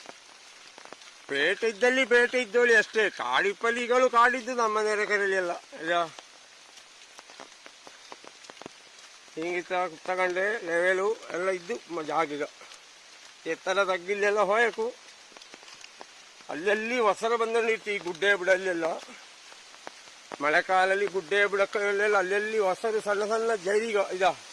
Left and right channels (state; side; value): identical; both; correlation 1.00